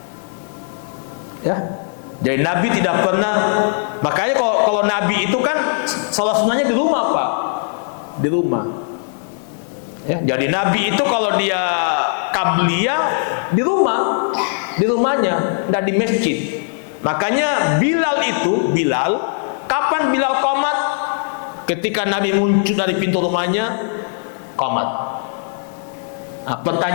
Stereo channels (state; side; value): silent; right; 57 dB below the other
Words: Ya, jadi Nabi tidak pernah. Makanya kalau Nabi itu kan sholat sunnahnya di rumah Pak, di rumah. Ya, jadi Nabi itu kalau dia qabliyah di rumahnya, tidak di masjid. Makanya Bilal, kapan Bilal qomat? Ketika Nabi muncul dari pintu rumahnya, qomat. Nah,